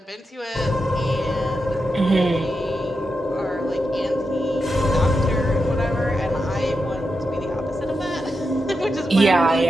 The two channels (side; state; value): both; normal; correlation 0.87